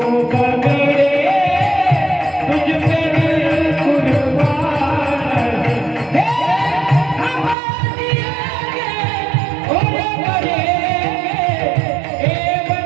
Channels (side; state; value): left; drops out; at 7.6 s